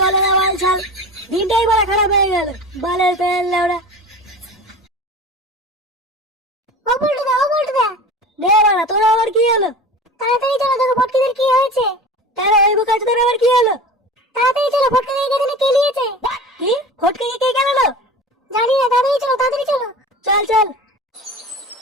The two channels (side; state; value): both; normal; correlation 0.35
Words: না বাল ছাল। দিনটাই বাড়া খারাপ হয়ে গেল, বালের ফ্যান লেওড়া। ও বলটুদা দে বাড়া, তোর আবার কি হলো? তাড়াতাড়ি চলো, দেখো ফটকিদের কি হয়েছে। তারা ওই বোকাচোদার আবার কি হলো? তাড়াতাড়ি চলো, ফটকে এখানে কেলিয়েছে। কি ফটকে কে গেল? জানি না, তাড়াতাড়ি চলো, তাড়াতাড়ি চলো। চল চল।